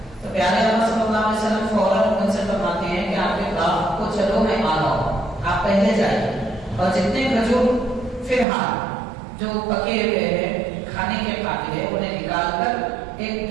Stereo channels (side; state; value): left; drops out; at 8.5 s